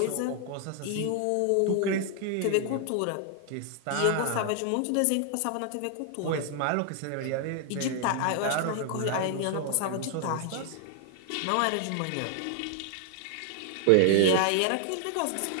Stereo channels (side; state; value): both; different; correlation 0.00